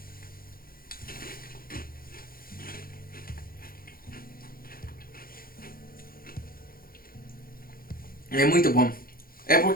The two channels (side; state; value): right; late; 0.42 ms